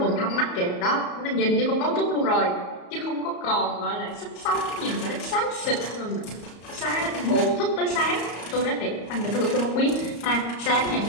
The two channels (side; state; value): right; late; 34 ms